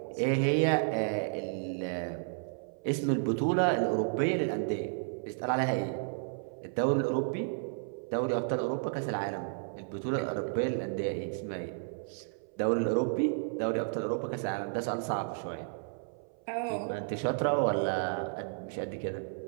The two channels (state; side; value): silent; left; 56 dB below the other